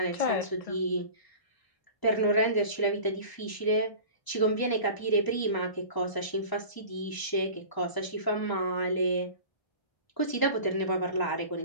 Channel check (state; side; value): late; right; 1.0 ms